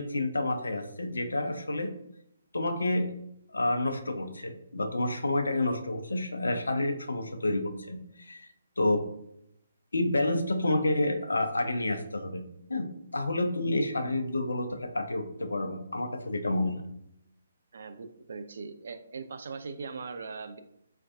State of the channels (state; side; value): inverted; both; correlation -0.86